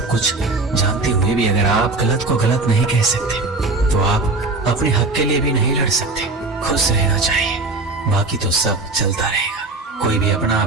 कुछ जानते हुए भी अगर आप गलत को गलत नहीं कह सकते तो आप अपने हक के लिए भी नहीं लड़ सकते। खुश रहना चाहिए, बाकी तो सब चलता रहेगा। कोई भी अपना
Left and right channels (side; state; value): left; quieter; 3.3 dB